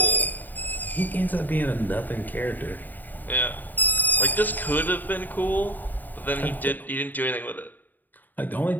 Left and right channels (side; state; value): right; late; 0.088 ms